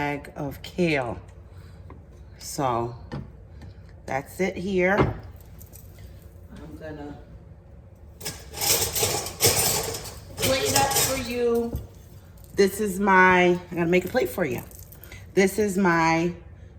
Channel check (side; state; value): both; identical; correlation 1.00